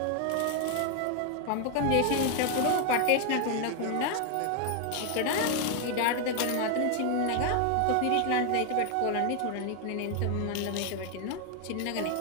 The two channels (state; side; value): different; both; correlation 0.01